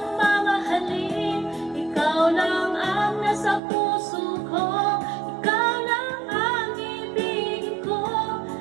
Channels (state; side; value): drops out; left; at 3.6 s